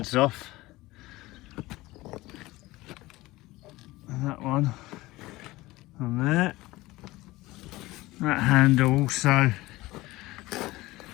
off. And that one on there. That handle also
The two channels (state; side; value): quieter; right; 19.3 dB